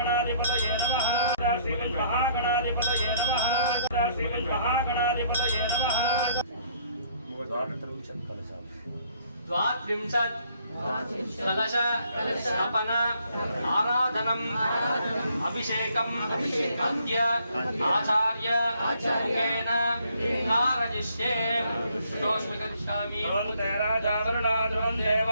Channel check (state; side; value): inverted; both; correlation -0.65